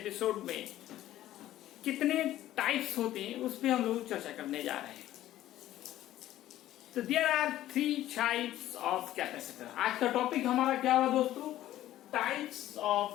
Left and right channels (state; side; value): quieter; right; 13.8 dB